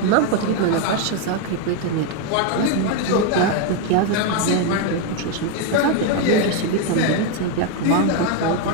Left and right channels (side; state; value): both; different; correlation 0.01